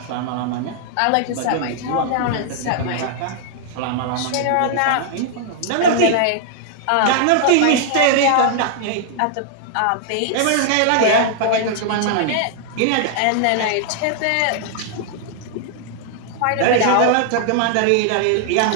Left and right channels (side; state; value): both; different; correlation -0.01